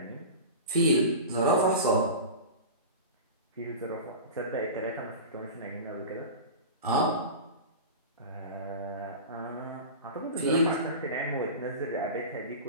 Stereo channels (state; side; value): inverted; both; correlation -0.30